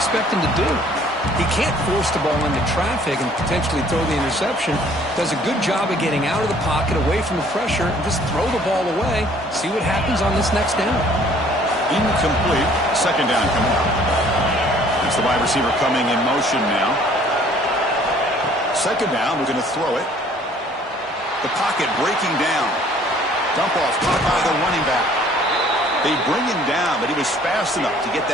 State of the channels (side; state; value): both; normal; correlation 0.57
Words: expect him to do? He can't force the ball into traffic and potentially throw the interception. Does a good job of getting out of the pocket, away from the pressure, and just throw the ball away. See what happens on this next down. Incomplete. Second down coming up. It's the wide receiver coming in motion now. Second down, we're going to throw it. The pocket breaking down. Dump off caught by the running back. They bring him down, but he was fast enough to get